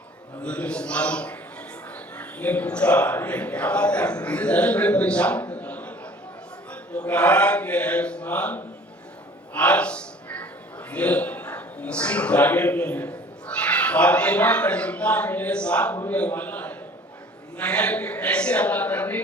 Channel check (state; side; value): normal; both; correlation 0.49